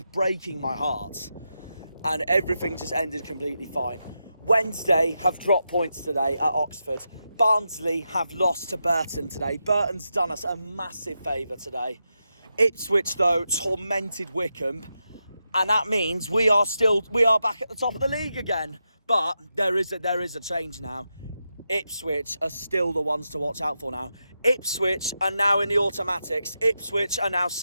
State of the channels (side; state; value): both; inverted; correlation -0.87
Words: breaking my heart. And everything just ended completely fine. Wednesday have dropped points today at Oxford. Barnsley have lost to Burton today. Burton's done us a massive favour today. Ipswich, though, tormented Morecambe. And that means we are back at the top of the league again. But there is a change now. Ipswich are still the ones to watch out for now. Ipswich are now in the automatics. Ipswich are now